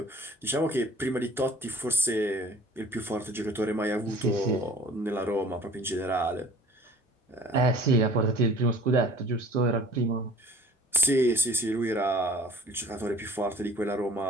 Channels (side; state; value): both; normal; correlation 0.48